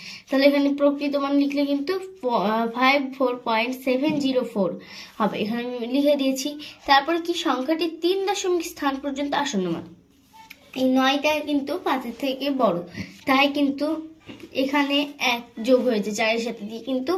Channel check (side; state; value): both; identical; correlation 1.00